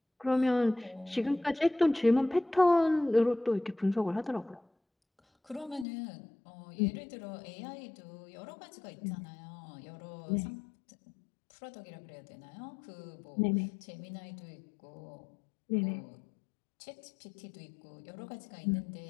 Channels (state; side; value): drops out; right; at 5.9 s